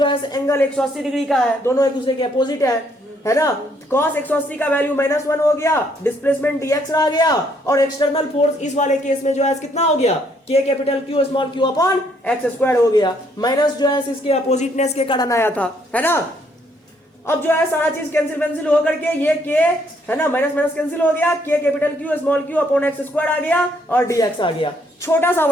है एंगल 180 डिग्री का है, दोनों एक दूसरे के अपोजिट है ना। cos 180 का वैल्यू -1 हो गया, डिस्प्लेसमेंट dx रह गया, और एक्सटर्नल फोर्स इस वाले केस में जो है कितना हो गया, K capital Q small q upon x square हो गया। माइनस जो है इसके अपोजिटनेस के कारण आया था, है ना। अब जो है सारा चीज कैंसिल होकर के ये K है ना, माइनस माइनस कैंसिल हो गया, K capital Q small q upon x square आ गया, और dx आ गया। छोटा सा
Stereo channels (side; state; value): both; normal; correlation 0.69